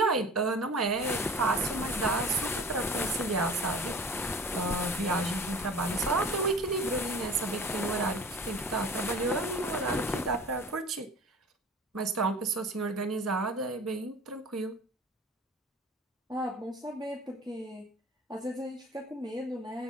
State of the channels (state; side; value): normal; both; correlation 0.42